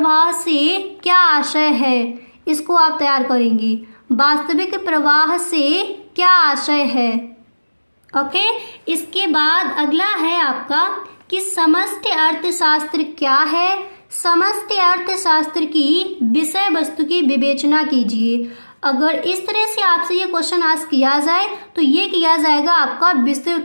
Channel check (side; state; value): both; inverted; correlation -1.00